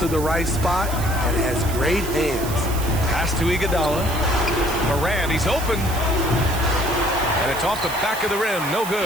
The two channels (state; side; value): noise; right; hiss, 11 dB below the sound